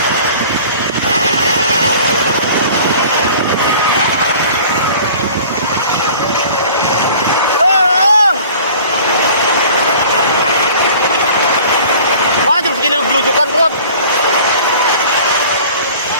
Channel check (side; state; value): both; inverted; correlation -0.46